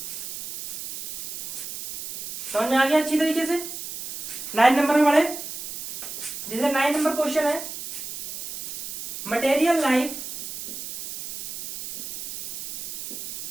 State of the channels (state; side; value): noise; right; hiss, 9 dB below the sound